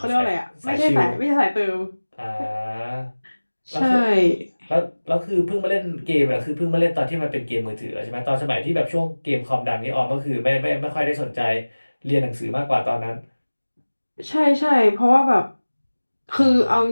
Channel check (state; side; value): inverted; both; correlation -1.00